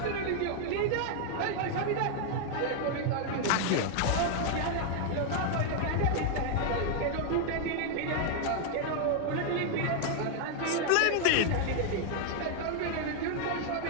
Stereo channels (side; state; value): both; different; correlation 0.00